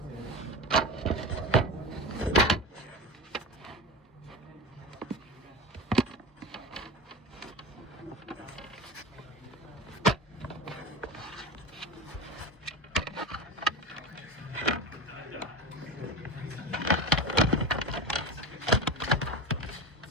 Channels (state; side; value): normal; both; correlation 0.26